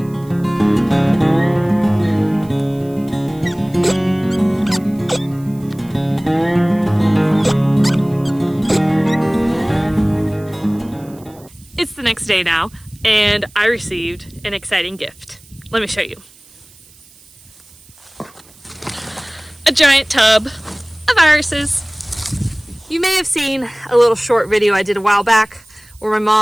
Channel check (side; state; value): right; noise; hiss, 26 dB below the sound